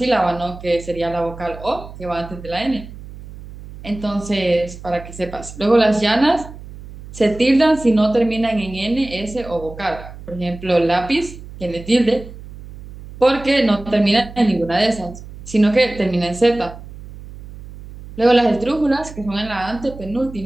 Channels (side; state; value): right; noise; hum, 15 dB below the sound